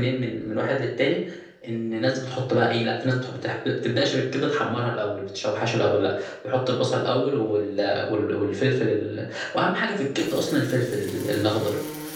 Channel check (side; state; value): both; identical; correlation 1.00